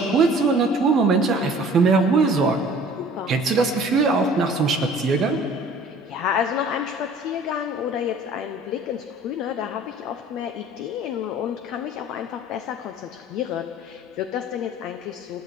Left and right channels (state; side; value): normal; both; correlation 0.49